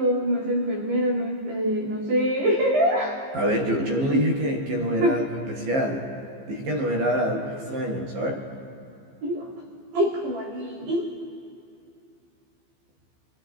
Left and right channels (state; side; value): late; left; 15 ms